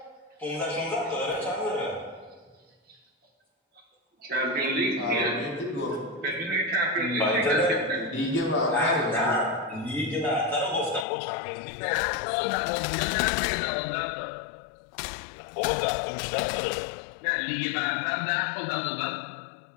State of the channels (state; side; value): drops out; right; at 11.1 s